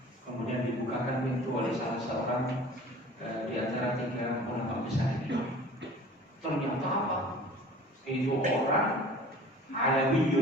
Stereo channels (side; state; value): both; normal; correlation 0.45